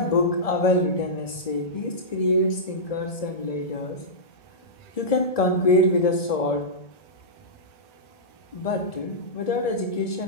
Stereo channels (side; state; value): right; late; 1.7 ms